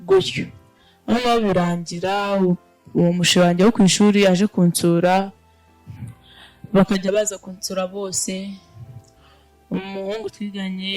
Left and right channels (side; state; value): both; identical; correlation 1.00